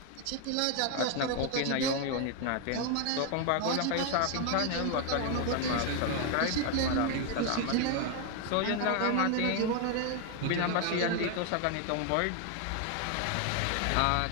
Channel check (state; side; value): different; both; correlation 0.01